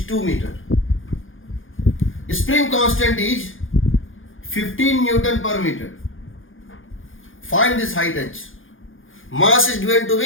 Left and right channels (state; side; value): late; right; 0.58 ms